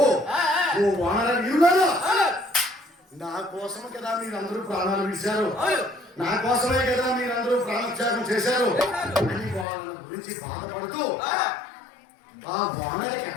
ఓ వానర వీరులారా, నా కోసమే కదా మీరందరూ ప్రాణాలు విడిచారు, నా కోసమే కదా మీరందరూ ప్రాణత్యాగం చేశారు అని వాళ్ళ గురించి బాధపడుతూ ఆ వానర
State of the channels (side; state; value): right; drops out; at 9.7 s